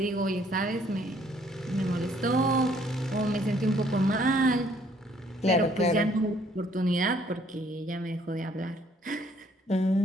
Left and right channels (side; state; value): both; normal; correlation 0.63